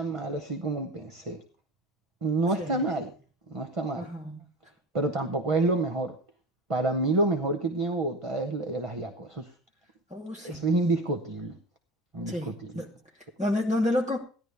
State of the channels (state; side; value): normal; both; correlation 0.33